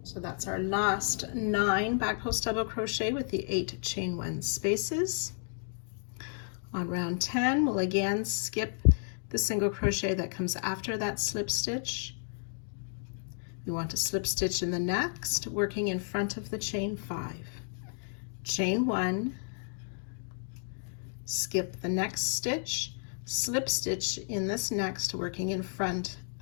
So that's our last 9 back post double crochet with the 8 chain 1 spaces. On round 10, we'll again skip the single crochet that comes after that slip stitch. We want to slip stitch in the next, working in front of the chain 5. Chain 1, skip the next stitch, slip stitch in this next, working in front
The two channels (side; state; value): right; silent; digital silence